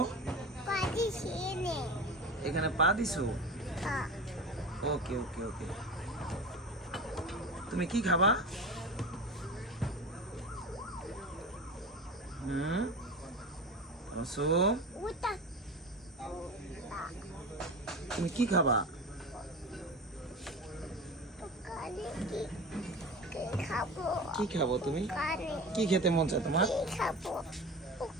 এখানে পা দিছো? ওকে ওকে ওকে। তুমি কি খাবা? তাবাসসুম, তুমি কি খাবা? কি খাবো তুমি? কি খেতে মন চায় তোমার?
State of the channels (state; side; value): normal; both; correlation 0.31